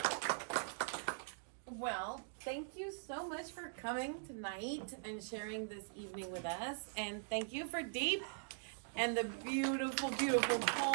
Well, thank you so much for coming tonight and sharing this evening with us. And thank you for D.E.E.P and the beautiful, beautiful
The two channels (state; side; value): silent; left; digital silence